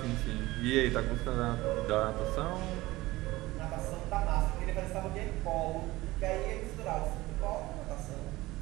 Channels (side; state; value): left; quieter; 18.9 dB